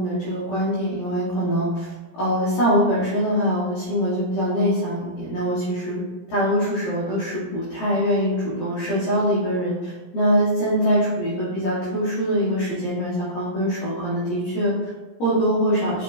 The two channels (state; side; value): late; right; 17 ms